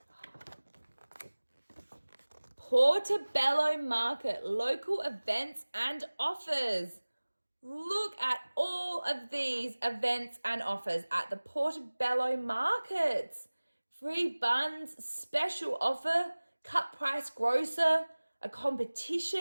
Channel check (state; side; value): inverted; both; correlation -1.00